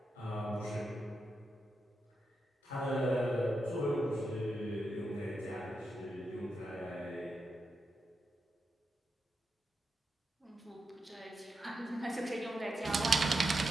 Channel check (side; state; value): both; normal; correlation 0.87